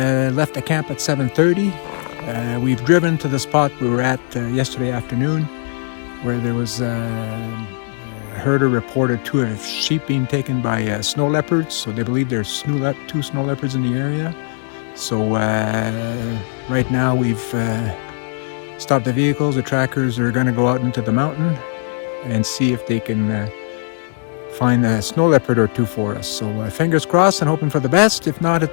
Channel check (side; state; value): right; silent; 61 dB below the other